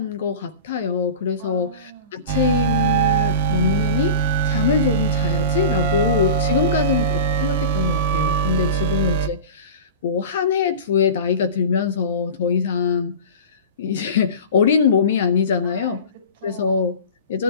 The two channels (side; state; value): both; inverted; correlation -0.32